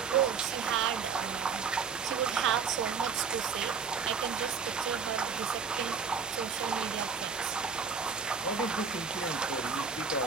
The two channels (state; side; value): quieter; left; 5.9 dB